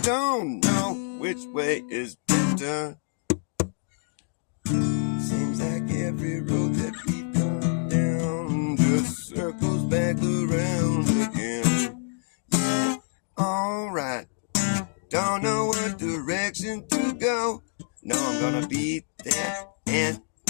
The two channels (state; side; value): silent; right; digital silence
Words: don't know which way is better. Seems like every road that we've gone down just circles back around again. Yeah, alright. Don't know what direction to go. No, I'm gonna be there, and